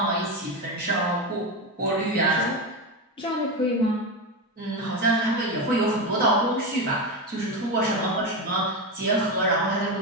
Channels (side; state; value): both; normal; correlation 0.15